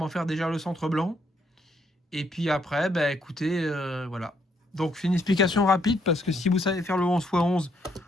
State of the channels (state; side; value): normal; both; correlation 0.72